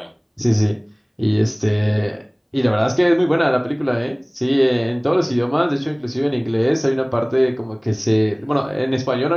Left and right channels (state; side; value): identical; both; correlation 1.00